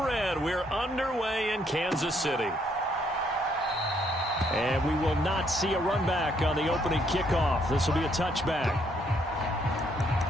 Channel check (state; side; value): normal; both; correlation 0.70